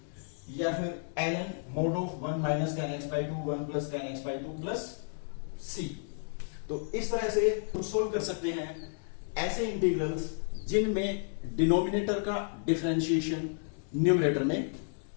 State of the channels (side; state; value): right; silent; digital silence